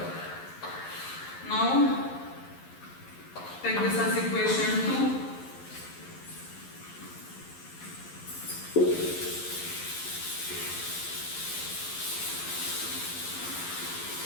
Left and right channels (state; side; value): late; right; 11 ms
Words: Now take this as equation 2.